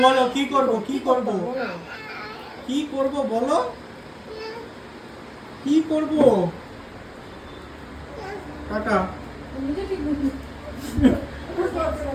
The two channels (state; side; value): identical; both; correlation 1.00